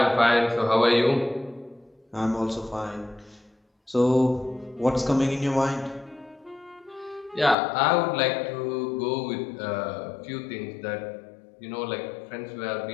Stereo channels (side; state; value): right; drops out; at 7.6 s